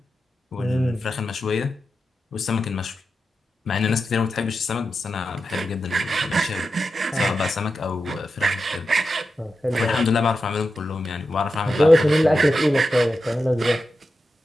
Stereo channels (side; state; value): both; normal; correlation 0.90